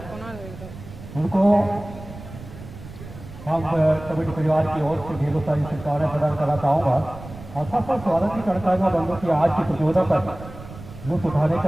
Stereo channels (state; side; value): noise; right; rumble, 15 dB below the sound